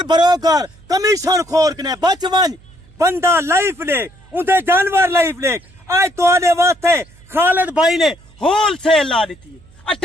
बरोकर कमीशन खोर ने बच वन बंदा लाइफ ले उनके जानवर लाइफ ले आज तो आने वास्ते खालिद भाई ने होल सेल ला दी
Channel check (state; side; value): noise; right; hum, 26 dB below the sound